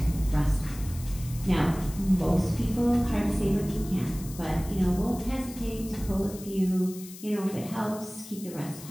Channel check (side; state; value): left; noise; hiss, 16 dB below the sound